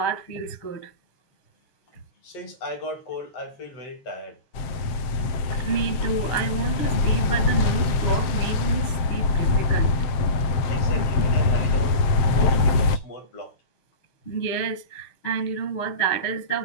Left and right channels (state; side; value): late; right; 7.6 ms